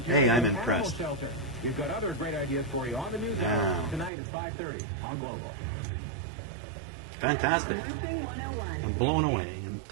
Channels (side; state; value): left; drops out; at 4.1 s